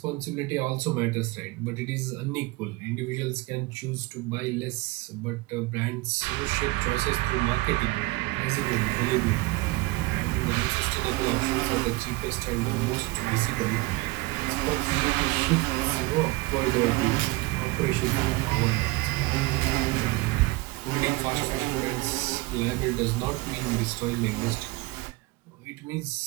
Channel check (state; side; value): quieter; left; 21.8 dB